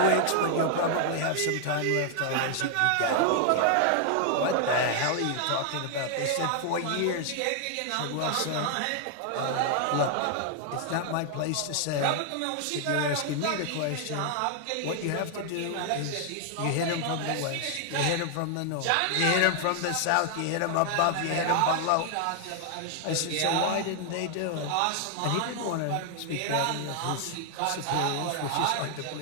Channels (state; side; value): different; both; correlation 0.00